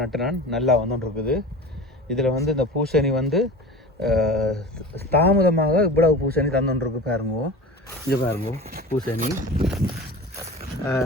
நட்டு நான் நல்லா வந்துட்டு இருக்குது. இதில் இந்த பூசணி தாமதமாக இவ்வளவு பூசணி தந்துருக்கு பாருங்க. இங்கே பாருங்க, பூசணி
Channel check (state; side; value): normal; both; correlation 0.33